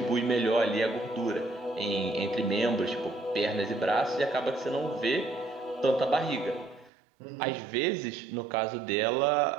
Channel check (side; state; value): left; drops out; at 6.9 s